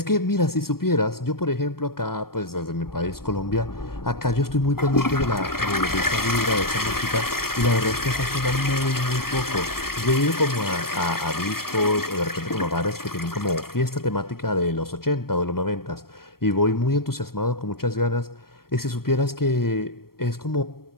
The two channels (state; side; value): late; right; 0.94 ms